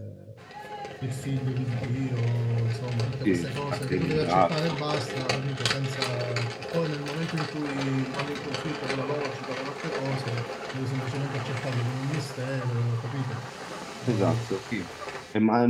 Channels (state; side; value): identical; both; correlation 1.00